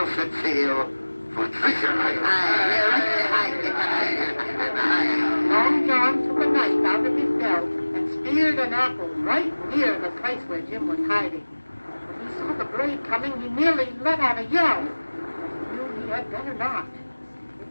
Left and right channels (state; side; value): inverted; both; correlation -1.00